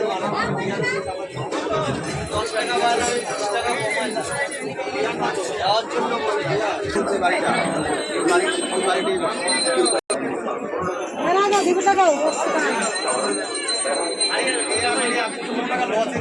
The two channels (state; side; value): identical; both; correlation 1.00